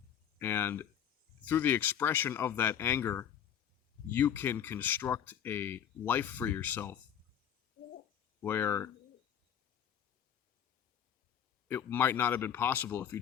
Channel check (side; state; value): right; quieter; 9.2 dB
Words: And through the expression of that anger, you can construct a life for yourself where it might not have been possible if you